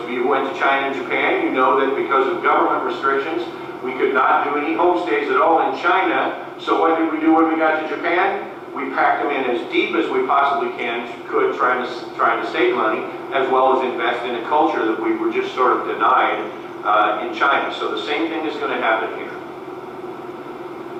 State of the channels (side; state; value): both; identical; correlation 1.00